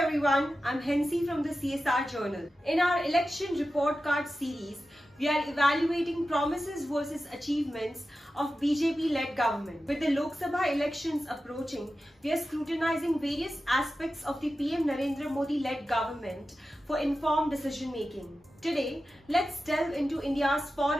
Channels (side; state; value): both; normal; correlation 0.93